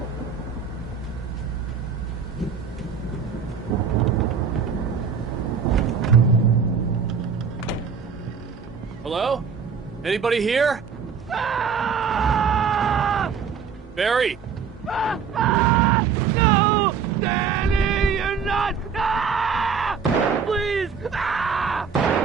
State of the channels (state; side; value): quieter; left; 6.4 dB